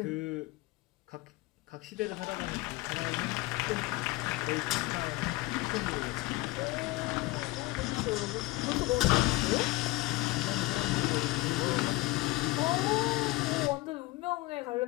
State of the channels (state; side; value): quieter; right; 20.4 dB